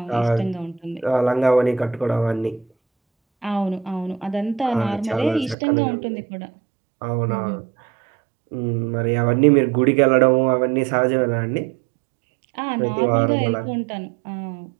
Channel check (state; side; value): drops out; left; at 5.6 s